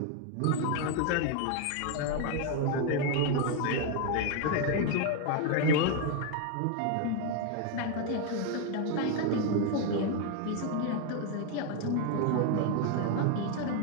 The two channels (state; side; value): different; both; correlation 0.01